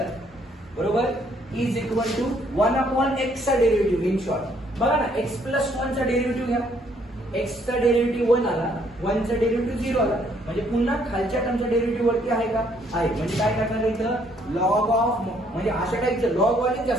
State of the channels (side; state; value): both; normal; correlation 0.66